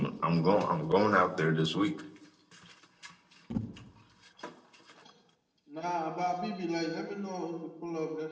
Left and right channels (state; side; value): identical; both; correlation 1.00